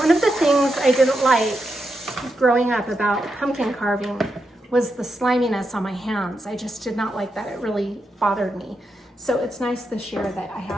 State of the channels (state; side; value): normal; both; correlation 0.85